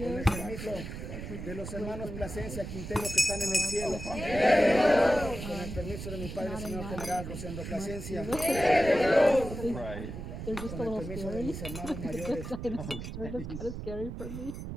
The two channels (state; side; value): noise; right; rumble, 8 dB below the sound